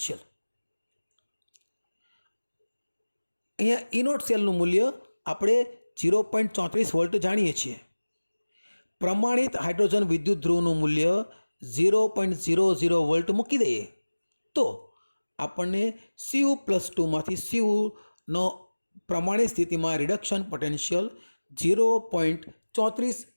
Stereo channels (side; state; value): both; inverted; correlation -1.00